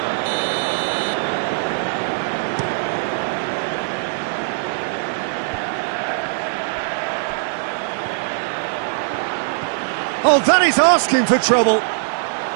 Oh, that is asking for trouble.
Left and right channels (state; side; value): silent; left; digital silence